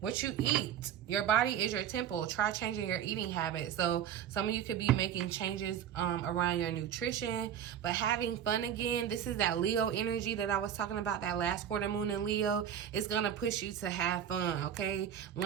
you eat. Your body is your temple. Try changing your eating habits. So some of you could be making changes around your nutrition, but having fun again. This is that Leo energy that I was talking about, that last quarter moon in Leo. It's gonna push you to have fun, okay?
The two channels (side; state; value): left; quieter; 9.5 dB